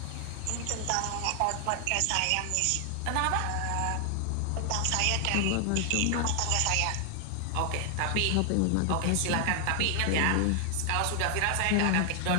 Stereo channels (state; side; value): different; both; correlation 0.00